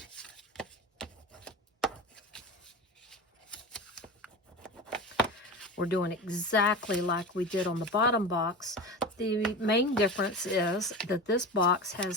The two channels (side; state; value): both; normal; correlation 0.28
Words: We're doing exactly like we did on the bottom box. The main difference is that this box